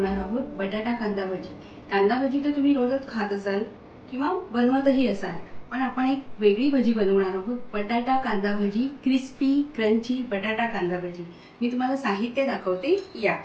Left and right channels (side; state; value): both; identical; correlation 1.00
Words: आहोत बटाटा कांदा भजी. कांदा भजी तर तुम्ही रोजच खात असाल किंवा बनवतही असाल, पण आपण एक वेगळी भजी बनवणार आहोत. बटाटा कांदा भजी, क्रिस्पी क्रंची बटाटा कांदा भजी. मी तुम्हाला साहित्य दाखवते. या